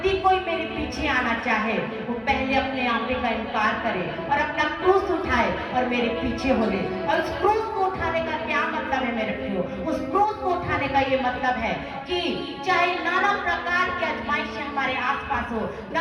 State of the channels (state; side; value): identical; both; correlation 1.00